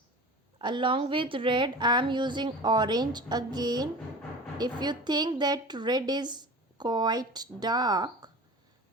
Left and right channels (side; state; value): both; normal; correlation 0.36